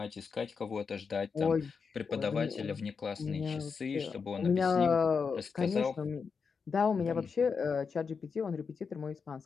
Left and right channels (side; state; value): right; quieter; 5.5 dB